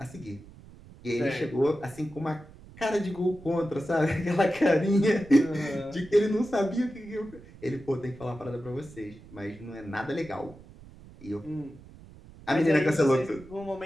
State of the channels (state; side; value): noise; right; rumble, 20 dB below the sound